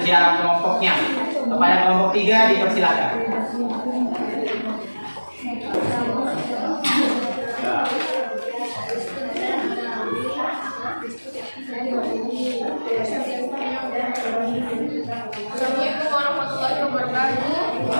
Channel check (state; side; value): inverted; both; correlation -1.00